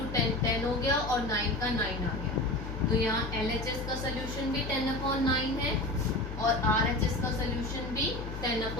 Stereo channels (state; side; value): noise; left; hum, 7 dB below the sound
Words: 10 10 हो गया और 9 का 9 आ गया। तो यहाँ LHS का सोल्यूशन भी 10/9 है और RHS का सोल्यूशन भी